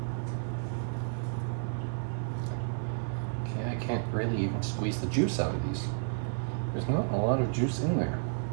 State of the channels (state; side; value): silent; left; digital silence